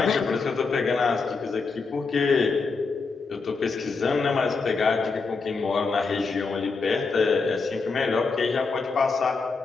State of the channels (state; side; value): quieter; right; 4.5 dB